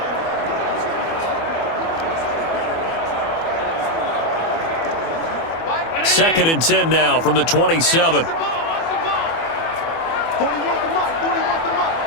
Second and 10 now from the 27.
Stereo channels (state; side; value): late; right; 24 ms